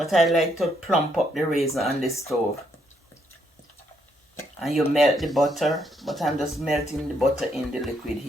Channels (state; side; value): normal; both; correlation 0.74